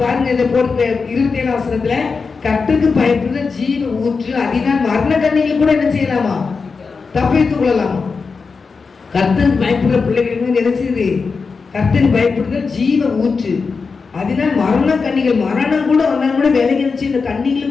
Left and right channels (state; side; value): quieter; right; 4.8 dB